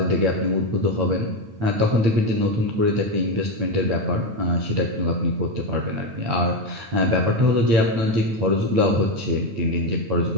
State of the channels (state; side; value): late; left; 8.9 ms